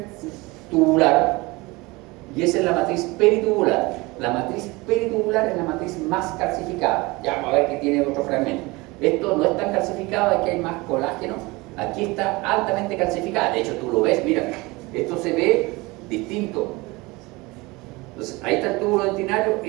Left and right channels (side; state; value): left; quieter; 23.4 dB